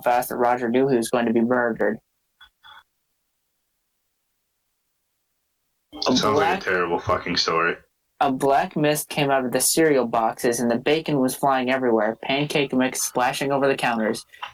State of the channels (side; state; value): both; identical; correlation 1.00